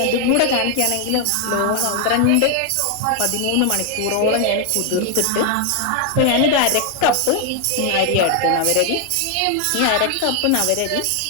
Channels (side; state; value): both; different; correlation 0.00